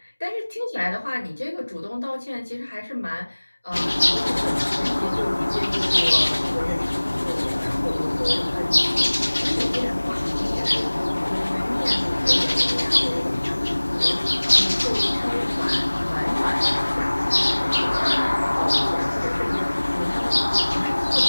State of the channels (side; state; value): both; inverted; correlation -1.00